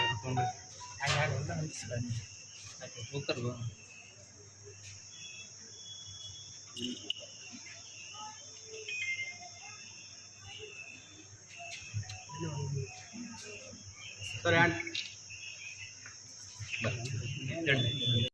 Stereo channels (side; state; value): both; identical; correlation 1.00